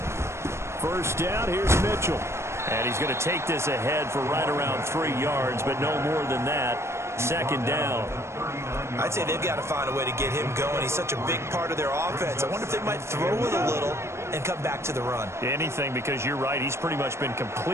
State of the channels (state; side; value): late; left; 0.13 ms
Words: First down, here's Mitchell. And he's going to take this ahead for right around 3 yards, but no more than that. 2nd down. I'd say they've got to find a way to get him going. He's such a big part of their offense. I wonder if they might throw it a little and come back to the run. Anything, because you're right. He's pretty much been